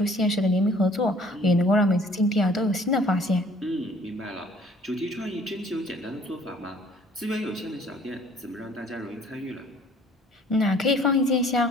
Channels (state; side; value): normal; both; correlation 0.55